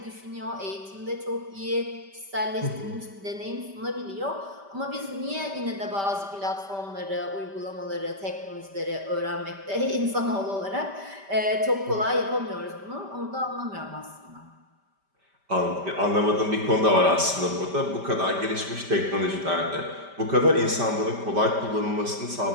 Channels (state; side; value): late; left; 5.1 ms